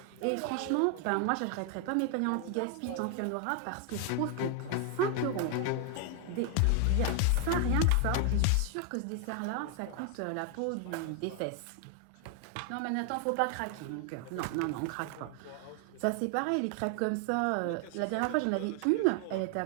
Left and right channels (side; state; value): both; different; correlation 0.00